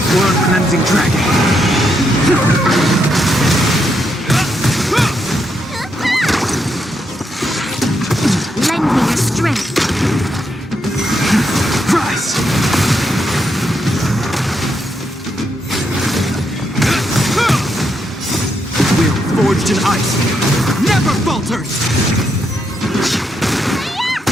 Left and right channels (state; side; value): normal; both; correlation 0.79